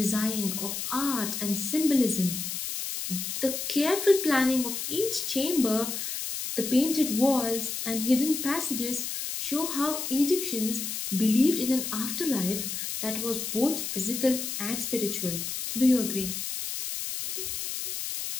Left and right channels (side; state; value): left; noise; hiss, 4 dB below the sound